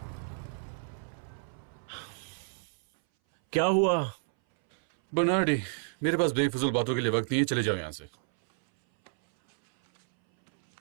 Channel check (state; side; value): silent; left; 58 dB below the other